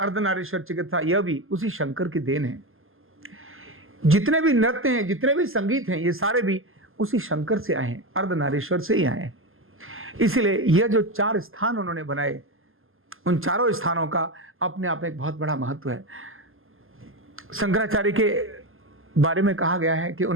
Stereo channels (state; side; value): late; left; 0.60 ms